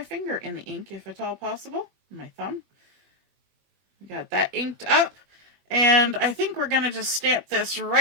finger in the ink if at all possible. My thumb. Got that inked up. And I think we're going to just stamp this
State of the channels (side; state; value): left; late; 21 ms